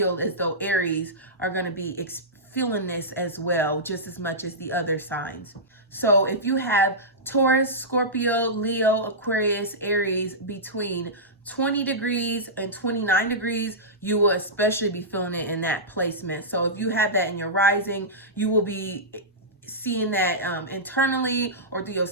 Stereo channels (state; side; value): normal; both; correlation -0.15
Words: as though Aries are going to be feeling this as well, just as much as the other signs. So if you have Taurus, Scorpio, Leo, Aquarius, Aries between 20 degrees and 29 degrees, you will especially be feeling it in that placement. So if you have that in your rising, you will be seeing that internally or through your